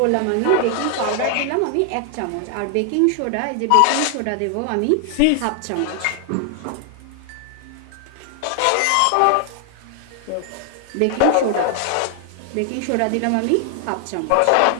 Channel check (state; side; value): different; both; correlation 0.00